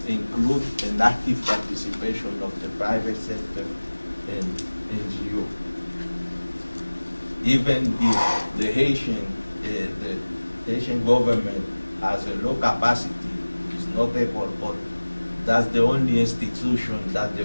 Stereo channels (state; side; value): inverted; both; correlation -1.00